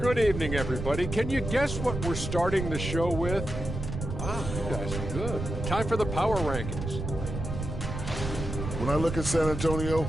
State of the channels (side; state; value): right; noise; rumble, 5 dB below the sound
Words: Good evening, everybody. Can you guess what we're starting the show with? Wow, you guys are good. Time for the power rankings. When I look at San Antonio,